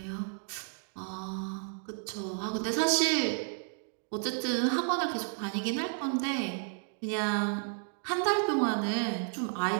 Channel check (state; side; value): silent; left; 56 dB below the other